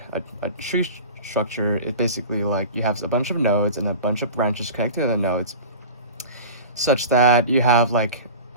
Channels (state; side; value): inverted; both; correlation -0.35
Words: a tree structure is basically like you have a bunch of nodes and a bunch of branches connected to the nodes, such that you have like